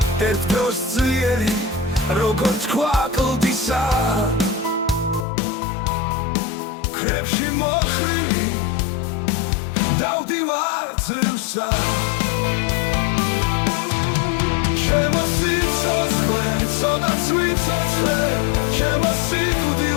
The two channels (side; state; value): right; drops out; at 5.2 s